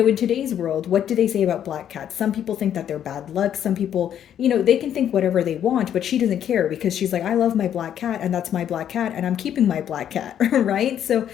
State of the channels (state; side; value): quieter; right; 9.8 dB